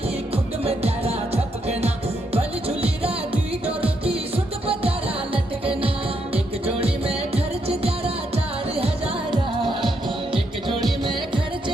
खुद में तेरा झपकना, भली झुली राती डोरों की सुट बजारा लटकना। एक जोड़ी में खर्च तेरा 4000, एक जोड़ी में खर्च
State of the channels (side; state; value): both; normal; correlation 0.78